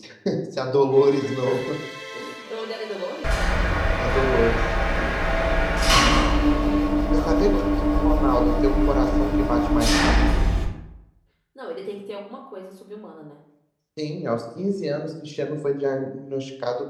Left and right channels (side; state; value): both; identical; correlation 1.00